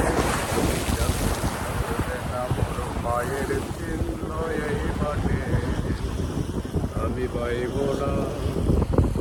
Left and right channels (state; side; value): identical; both; correlation 1.00